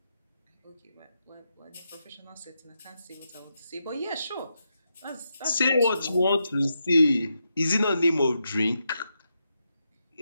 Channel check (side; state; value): both; inverted; correlation -0.85